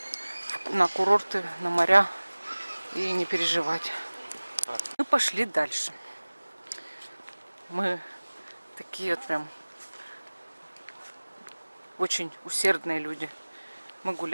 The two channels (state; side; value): inverted; both; correlation -1.00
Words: на курорты, на моря и не переживать. Мы пошли дальше. Мы такие вот прям очень усердные люди. Мы